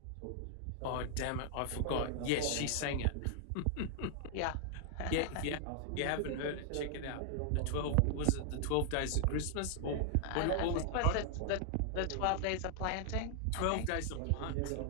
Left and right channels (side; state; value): both; different; correlation 0.00